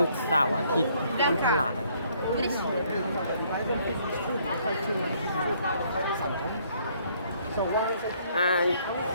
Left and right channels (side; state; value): both; inverted; correlation -0.65